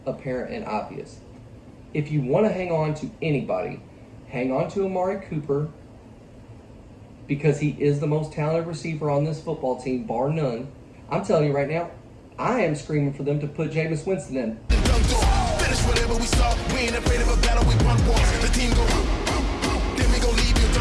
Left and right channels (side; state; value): both; identical; correlation 1.00